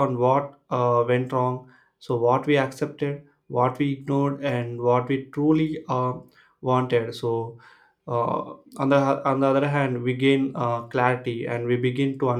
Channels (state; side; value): identical; both; correlation 1.00